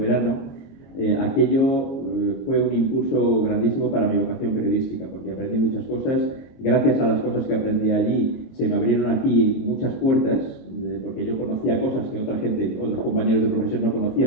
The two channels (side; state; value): right; late; 22 ms